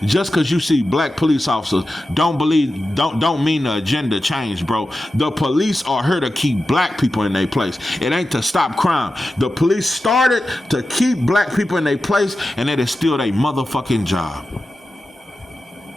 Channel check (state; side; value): normal; both; correlation 0.92